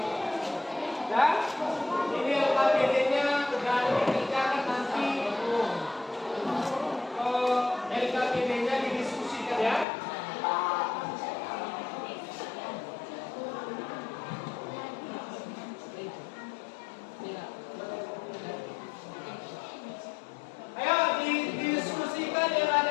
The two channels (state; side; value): drops out; right; at 9.9 s